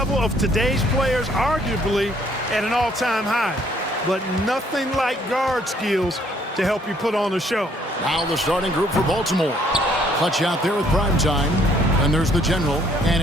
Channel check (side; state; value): both; normal; correlation 0.64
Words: of today's players arguably at an all-time high. But nothing like guard skills to help you put on a show. Now the starting group for Baltimore. Clutch out there with Primetime. And there's the General. And